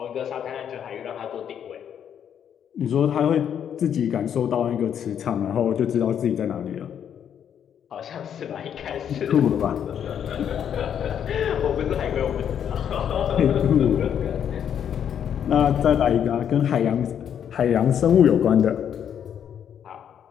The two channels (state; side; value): quieter; right; 8.8 dB